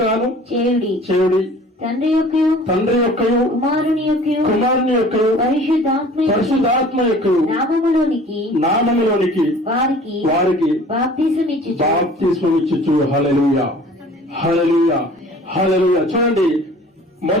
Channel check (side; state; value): both; normal; correlation 0.48